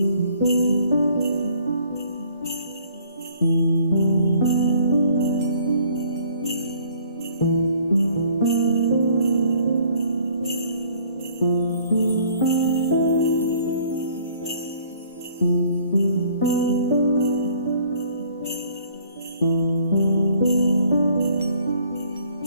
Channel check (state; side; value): inverted; both; correlation -0.59